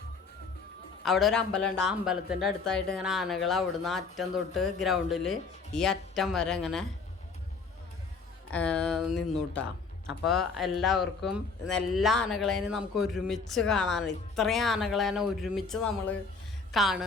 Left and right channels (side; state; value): right; quieter; 4.6 dB